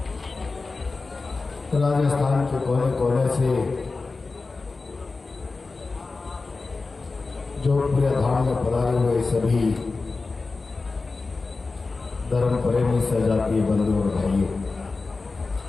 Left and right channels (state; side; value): quieter; right; 3.9 dB